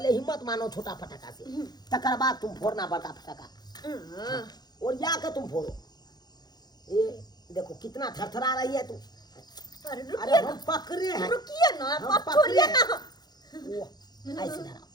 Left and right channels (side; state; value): right; late; 0.20 ms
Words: हिम्मत मानो छोटा फटाका से, तकर बाद तुम फोड़ना बड़का फटाका। और जाके तुम फोड़ो। ये देखो कितना थरथरा रही है तुम। अरे अरे रुकिए हम ना, पकड़े हैं। रुकिए ना, हम आप पकड़े छोड़िए हैं। ना। वो, ऐसे धराओ,